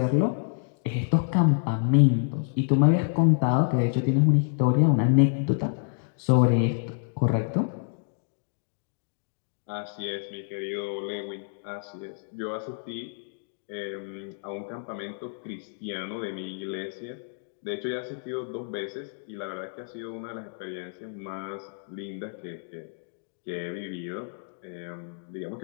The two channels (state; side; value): silent; right; digital silence